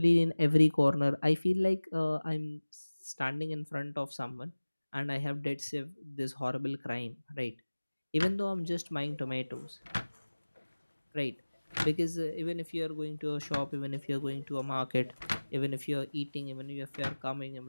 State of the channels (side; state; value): both; inverted; correlation -1.00